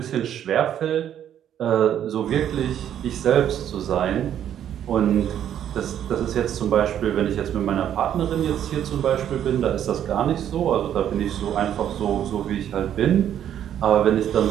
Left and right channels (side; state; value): left; quieter; 10.2 dB